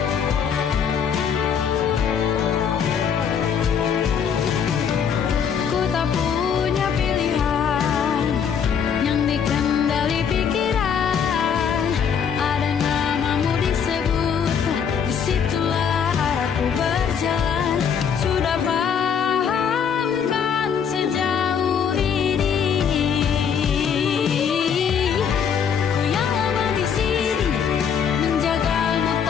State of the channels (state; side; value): quieter; right; 7.4 dB